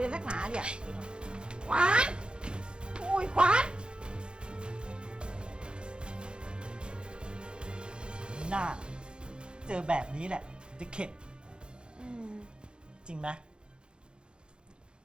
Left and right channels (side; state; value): left; late; 0.052 ms